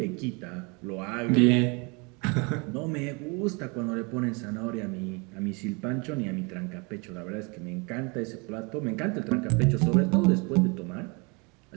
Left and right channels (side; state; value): left; quieter; 30.3 dB